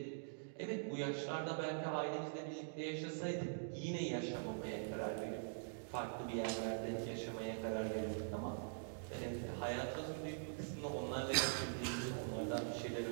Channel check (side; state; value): left; silent; digital silence